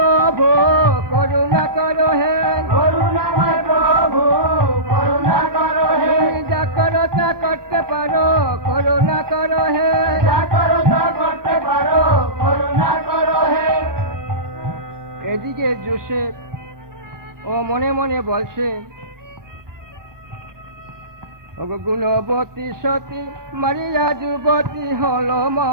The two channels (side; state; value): left; late; 1.2 ms